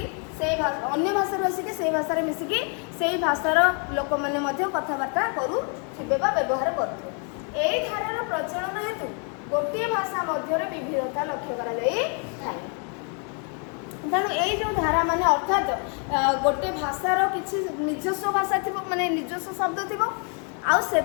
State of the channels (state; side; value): quieter; right; 39.1 dB